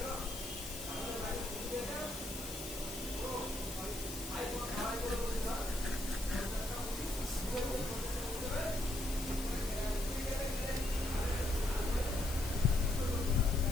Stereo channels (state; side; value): noise; left; hiss, 10 dB below the sound